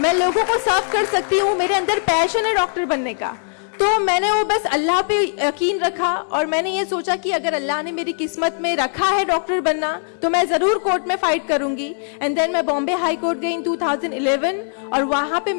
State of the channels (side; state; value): right; silent; digital silence